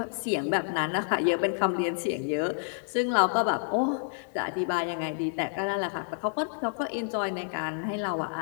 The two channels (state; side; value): silent; right; digital silence